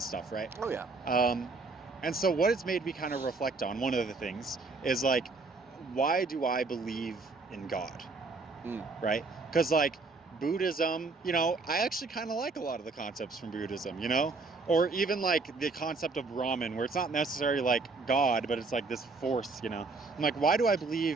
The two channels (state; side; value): quieter; left; 3.8 dB